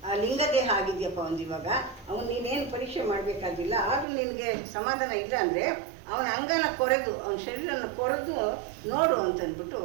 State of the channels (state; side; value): drops out; left; at 4.0 s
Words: ಆ ಲಿಂಗದೇಹ ಆಗಿದೆಯಪ್ಪ ಒಂದು ಇವಾಗ, ಅವನು ನೀನೇನು ಪರೀಕ್ಷೆ ಮಾಡಬೇಕಾಗಿಲ್ಲ, ಆದರೂ ನಿನಗೆ ಸಮಾಧಾನ ಇಲ್ಲ ಅಂದರೆ ಅವನ ಅಂಗನ ಕೊರೆದು ಅವನ ಶರೀರನ ಕೊರೆದು ನೋಡು ಅಂತಂದ್ಬಿಟ್ಟು